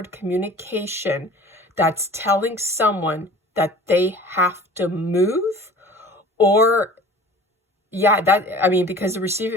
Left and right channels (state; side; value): normal; both; correlation 0.43